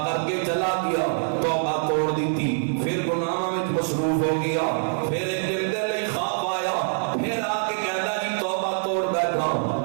کر کے چلا گیا، توبہ توڑ دی تھی، پھر گناہوں میں مصروف ہو گیا، پھر ایک دن دے لئی خواب آیا، پھر آ کے کہندا جی توبہ توڑ بیٹھا،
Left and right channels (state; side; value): silent; left; 62 dB below the other